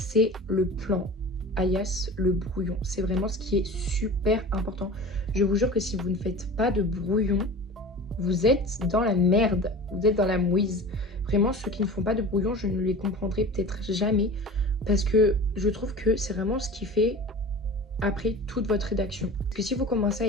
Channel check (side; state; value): both; normal; correlation 0.36